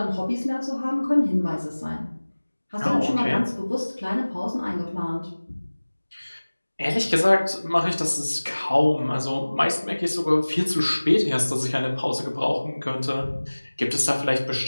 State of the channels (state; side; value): inverted; both; correlation -1.00